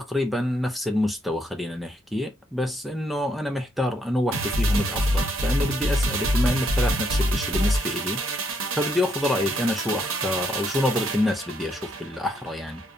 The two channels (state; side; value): normal; both; correlation 0.74